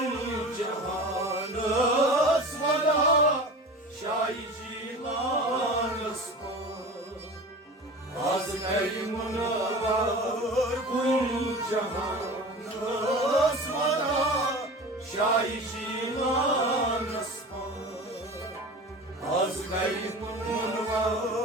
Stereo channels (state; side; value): normal; both; correlation 0.35